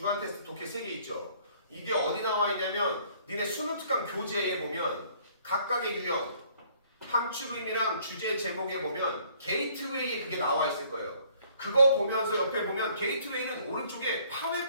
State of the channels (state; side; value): inverted; both; correlation -0.60